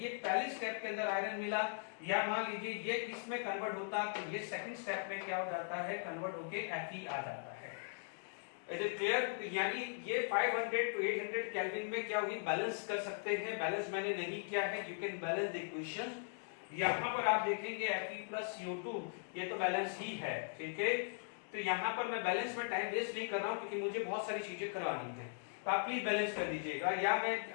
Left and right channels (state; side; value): silent; right; digital silence